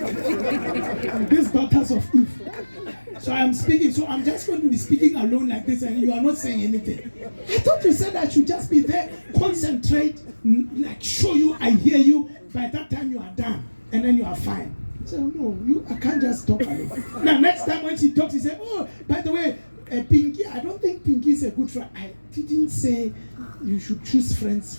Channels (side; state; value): both; inverted; correlation -1.00